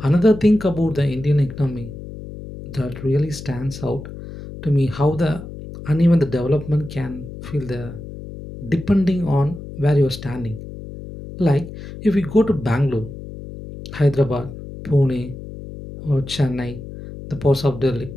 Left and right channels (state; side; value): noise; left; hum, 12 dB below the sound